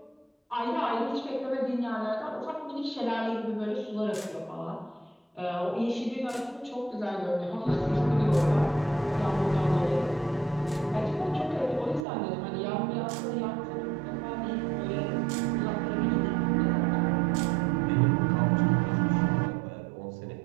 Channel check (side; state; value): left; drops out; at 12.1 s